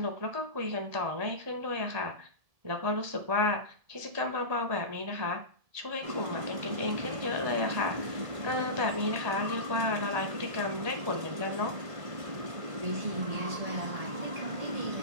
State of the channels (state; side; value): late; left; 1.7 ms